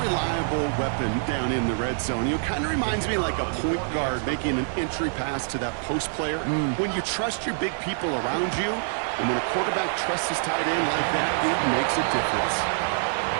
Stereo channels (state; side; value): silent; left; digital silence